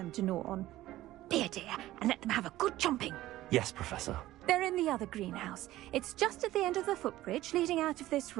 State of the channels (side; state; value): left; quieter; 15.5 dB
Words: to gnaw on. Be a dear and let them have a good chomping. Yes, Professor. They're in the other greenhouse. It's just at the end of the footbridge leading out of this